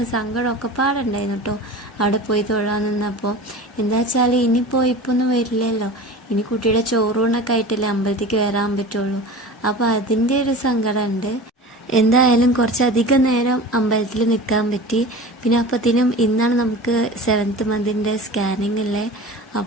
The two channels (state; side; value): normal; both; correlation 0.35